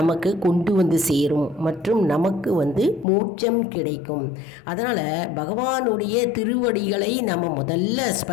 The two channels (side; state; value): right; drops out; at 3.1 s